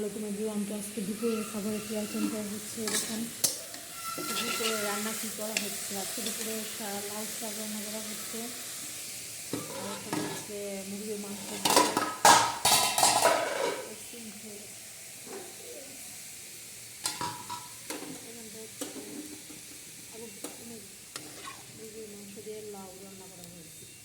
এভরিওয়ান। তো আজকে দুপুরের খাবারের কি আইটেমটা হচ্ছে এরকম। দুপুরে রান্না কী করা হচ্ছে, আজকে দুপুরে লাউ শাক রান্না করা হচ্ছে। আর এখন হচ্ছে মুরগির মাংস মুরগির মাংস দিয়ে লাউ রান্না করা হয়েছে।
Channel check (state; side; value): identical; both; correlation 1.00